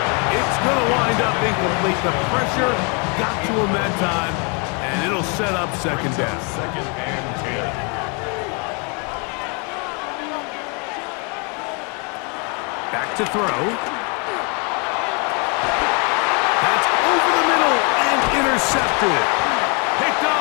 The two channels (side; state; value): right; quieter; 34.4 dB